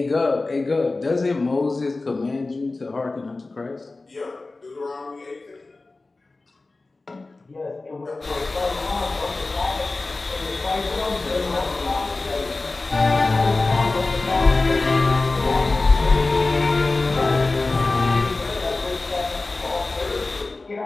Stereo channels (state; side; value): quieter; right; 3.4 dB